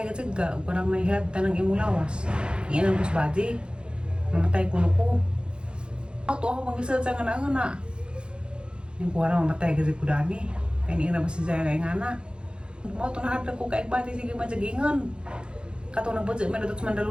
ka jud ka, ug parang mahilabtan ng imong lawas. Yan ang kusbaji. Mamatay kuno ko. Ato ako pangisad sa ngana-ngana. Yung kuwara mamatay ka jud ko dani. Kaya ni ina basi siya kay ngana. Mao to nahadlok ko kay bati sige majagingon. Kato na budget man datot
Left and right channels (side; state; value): left; late; 0.053 ms